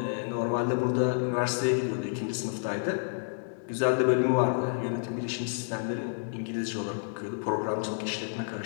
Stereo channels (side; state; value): right; silent; digital silence